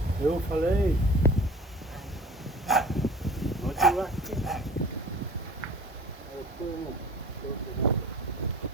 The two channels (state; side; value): normal; both; correlation 0.43